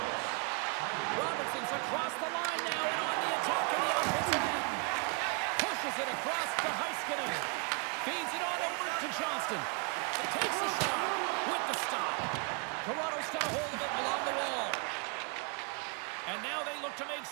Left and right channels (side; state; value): left; quieter; 36.5 dB